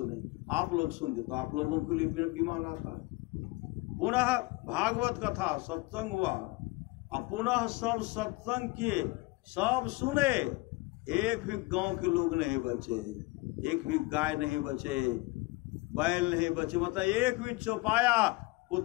आप लोग सुनते तो आप लोगों के लिए विमान आता। पुनः भागवत कथा सत्संग हुआ, अब पुनः सब सत्संग किए, सब सुने, एक भी गांव के लोग नहीं बचे, एक भी गाय नहीं बचे, बैल नहीं बचे, मतलब एक भी चौपाया,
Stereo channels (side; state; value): right; quieter; 23.0 dB